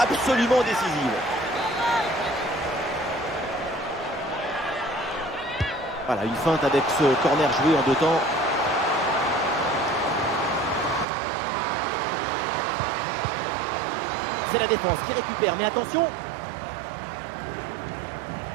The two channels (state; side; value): drops out; left; at 11.1 s